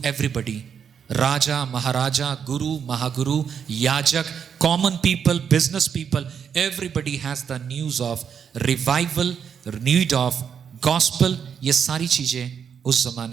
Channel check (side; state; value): left; quieter; 7.5 dB